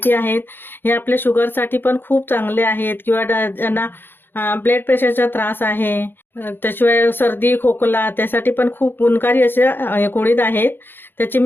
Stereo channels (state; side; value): late; right; 0.10 ms